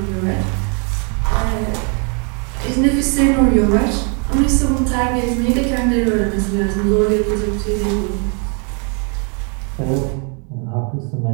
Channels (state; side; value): quieter; left; 37.7 dB